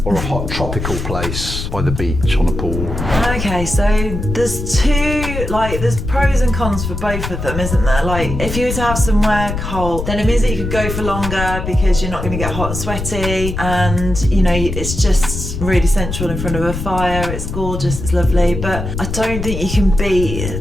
or a hot tropical place by the beach on a pool? Okay, so there's there's pros and cons for both of them, isn't there? Like, if you were to have somewhere cold, then it means that you could go for longer because you're not going to get hot and sweaty, and, you know, it's just really sensual in front of a fire. It's gorgeous, it's lovely, but I don't think you can beat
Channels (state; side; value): noise; left; rumble, 5 dB below the sound